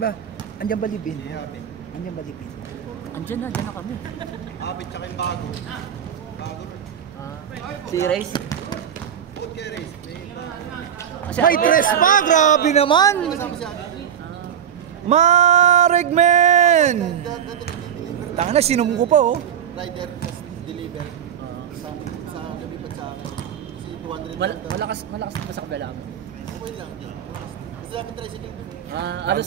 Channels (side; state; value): left; quieter; 9.1 dB